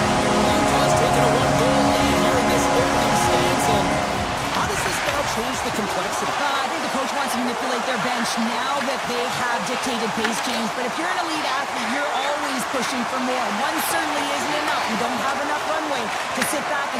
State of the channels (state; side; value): identical; both; correlation 1.00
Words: taken a one-goal lead here in this opening stance. And how does this now change the complexity? I think the coach wants to manipulate their bench, pushing for more. One certainly isn't enough. You don't have enough runway to sit back